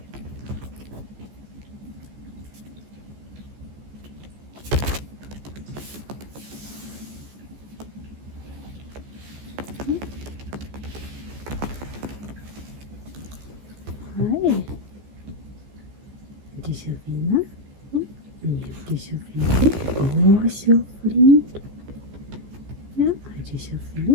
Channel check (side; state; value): left; late; 14 ms